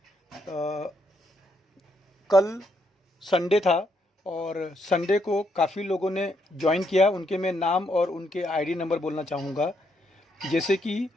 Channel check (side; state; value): both; normal; correlation 0.75